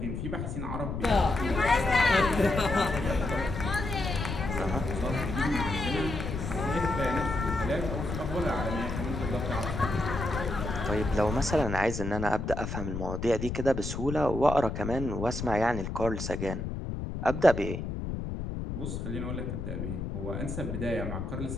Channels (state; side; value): noise; left; rumble, 4 dB below the sound